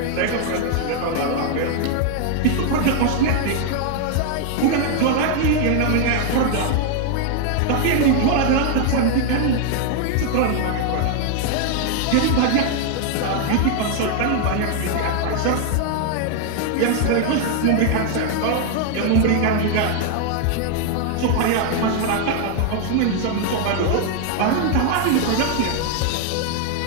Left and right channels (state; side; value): different; both; correlation 0.00